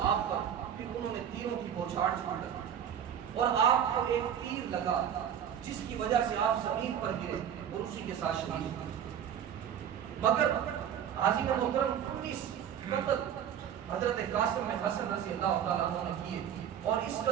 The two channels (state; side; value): quieter; left; 9.2 dB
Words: آپ پر پھر انہوں نے تیروں کی بوچھاڑ چھوڑ دی اور آپ کو ایک تیر لگا جس کی وجہ سے آپ زمین پر گرے اور اسی کے ساتھ شہید ہوئے۔ مگر حاضرین محترم 19 قتل حضرت قاسم بن حسن رضی اللہ تعالیٰ عنہ نے کیے، اور اس